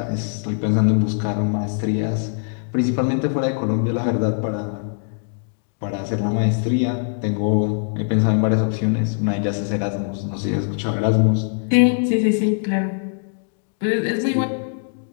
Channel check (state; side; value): silent; right; 64 dB below the other